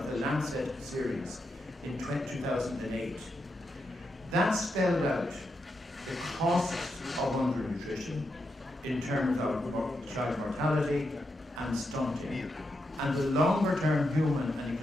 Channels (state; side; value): normal; both; correlation 0.84